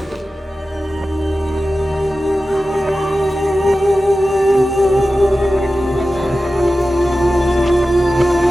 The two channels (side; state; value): both; normal; correlation 0.94